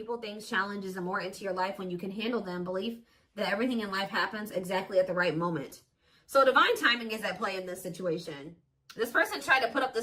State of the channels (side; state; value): both; identical; correlation 1.00